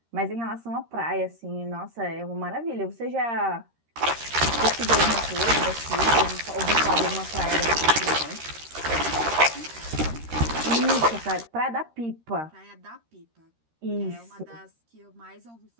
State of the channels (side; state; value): left; late; 13 ms